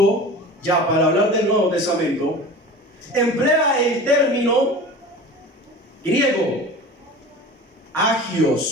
ya para hablar del Nuevo Testamento, emplea el término griego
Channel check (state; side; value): normal; both; correlation 0.36